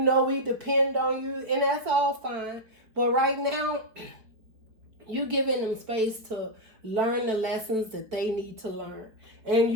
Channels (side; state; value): left; late; 4.4 ms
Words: we depend on you, and that's all fine. But right now, You giving them space to learn the lessons that they need to learn. And